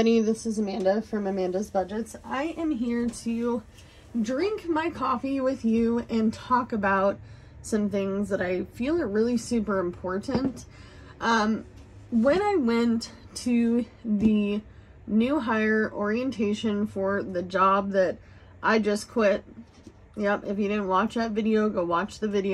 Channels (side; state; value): both; identical; correlation 1.00